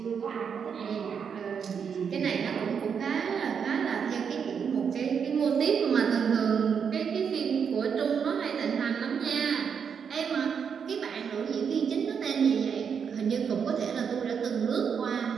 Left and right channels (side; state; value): left; quieter; 6.9 dB